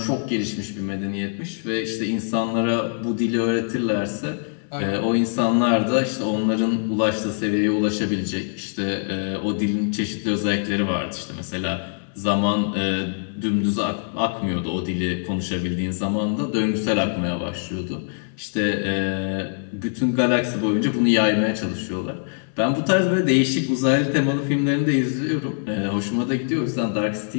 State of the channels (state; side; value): silent; right; 63 dB below the other